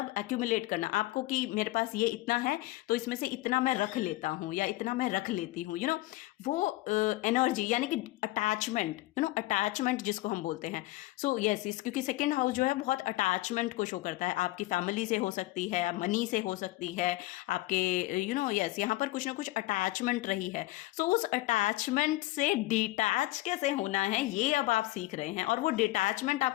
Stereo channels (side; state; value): right; quieter; 18.4 dB